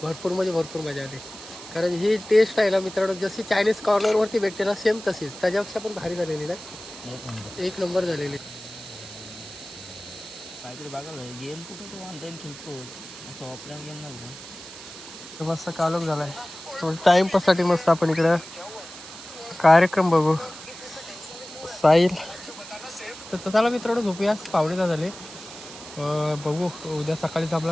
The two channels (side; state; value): right; noise; hiss, 14 dB below the sound